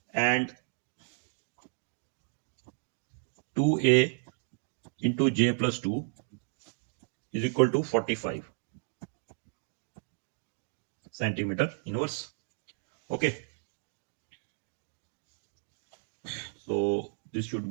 and 2a into j plus 2 is equal to 45 centimeter inverse. Okay, so this should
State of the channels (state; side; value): silent; left; digital silence